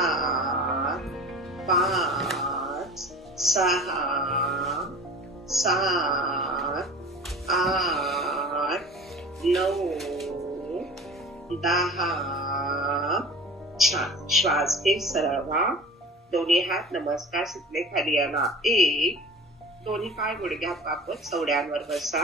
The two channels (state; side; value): normal; both; correlation 0.38